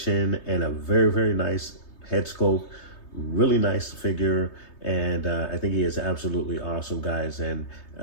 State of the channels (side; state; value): right; late; 3.2 ms